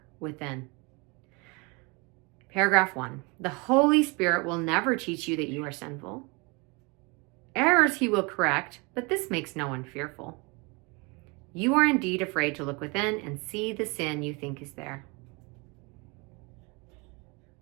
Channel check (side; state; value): left; quieter; 28.9 dB